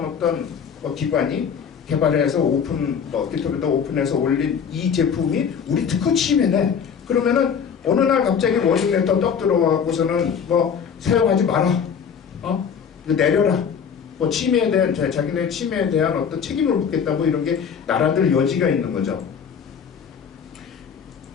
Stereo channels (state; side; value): quieter; right; 7.1 dB